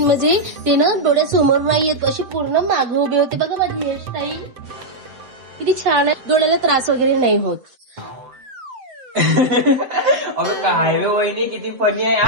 म्हणजे ते ना डोळ्यासमोर नाही येत, अशी पूर्ण मागे उभे होते. बघा माझी हेअरस्टाईल किती छान आहे. डोळ्याला त्रास वगैरे नाही होत. अबे काय रे वहिनी, किती फनी आहे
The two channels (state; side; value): late; left; 7.8 ms